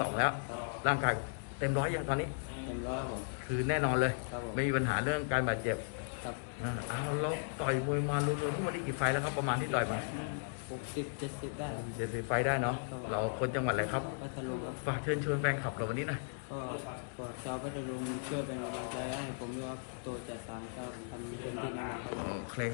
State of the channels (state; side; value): silent; right; digital silence